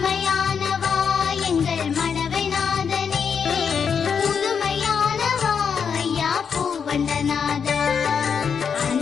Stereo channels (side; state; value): right; quieter; 6.7 dB